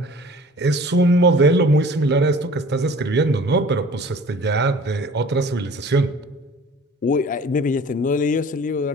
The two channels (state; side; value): normal; both; correlation 0.47